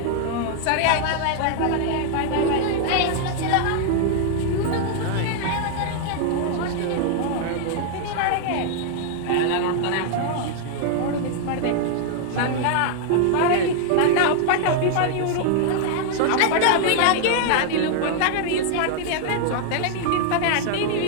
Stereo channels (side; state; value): both; different; correlation 0.00